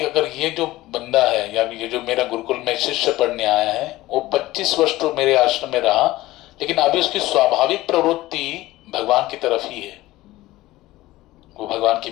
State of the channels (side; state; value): right; quieter; 17.5 dB